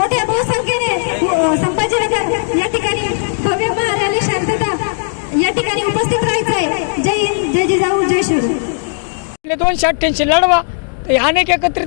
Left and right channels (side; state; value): right; silent; 69 dB below the other